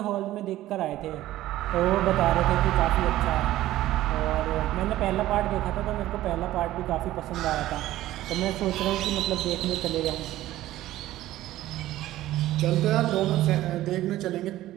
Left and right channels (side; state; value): left; quieter; 14.9 dB